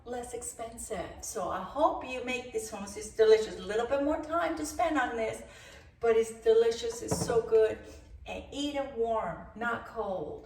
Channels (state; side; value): identical; both; correlation 1.00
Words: less expensive. So I hope you make this hummus. It's delicious. A little bit more time to spend on this, but it's delicious. It's so good. And eat it warm, not